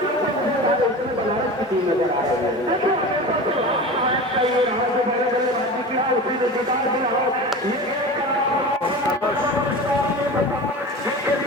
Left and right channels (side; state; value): both; normal; correlation 0.32